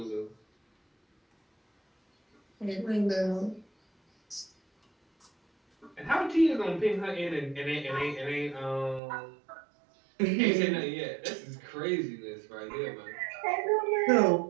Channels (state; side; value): drops out; left; at 9.0 s